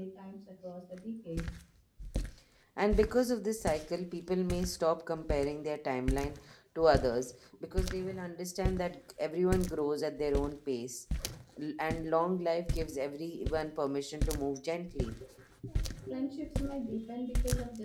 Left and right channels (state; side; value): identical; both; correlation 1.00